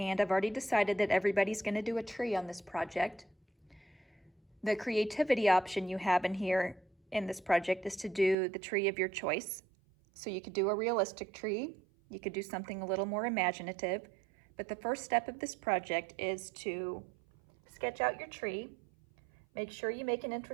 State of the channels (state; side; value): drops out; left; at 8.3 s